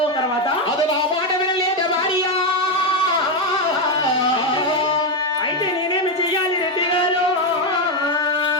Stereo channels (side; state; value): both; normal; correlation 0.07